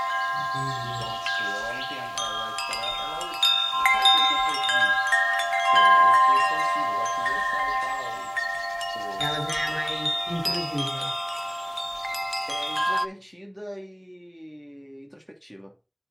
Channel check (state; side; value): identical; both; correlation 1.00